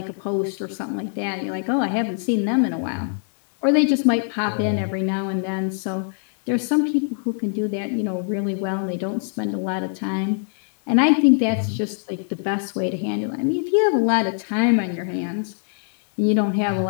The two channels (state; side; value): silent; right; digital silence